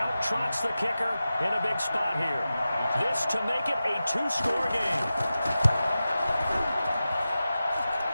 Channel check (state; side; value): inverted; both; correlation -0.93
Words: trots the kicker in a big spot here. This to make it a 2-score game.